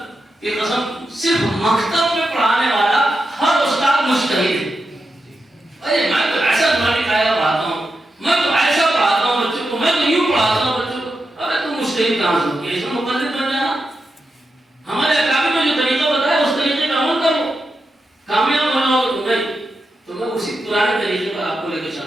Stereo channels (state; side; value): normal; both; correlation 0.88